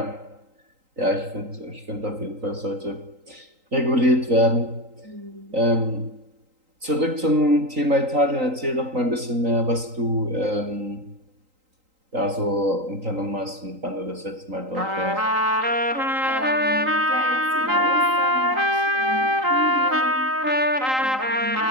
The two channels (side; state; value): left; late; 3.8 ms